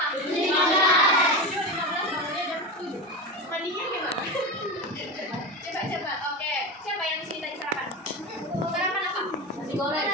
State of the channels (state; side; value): normal; both; correlation 0.22